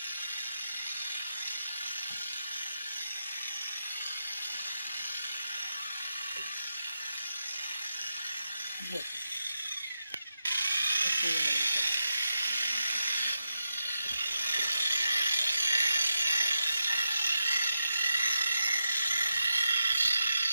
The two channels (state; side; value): inverted; both; correlation -0.87